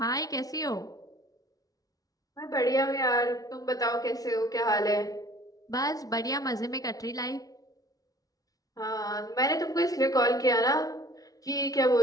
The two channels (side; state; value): right; late; 0.18 ms